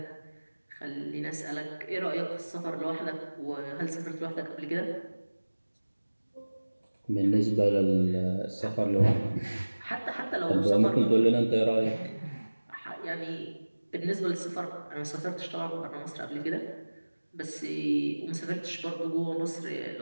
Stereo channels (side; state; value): both; inverted; correlation -1.00